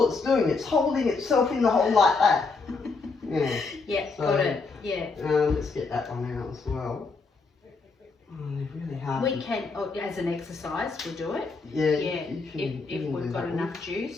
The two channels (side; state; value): right; quieter; 4.2 dB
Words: it's doing, it's holding itself in the hole like that. Yeah. Yeah, So, got it. Yeah. Let's get that one out as well. they're really hard. We can, as an exercise, we'll do it. Yeah. Yeah, if we've got enough